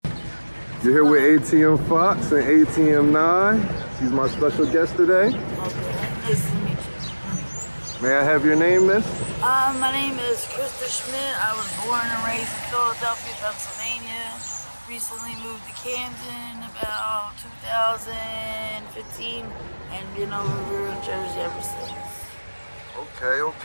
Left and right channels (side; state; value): both; inverted; correlation -1.00